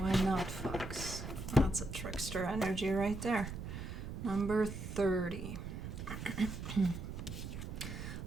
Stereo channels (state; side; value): noise; right; rumble, 7 dB below the sound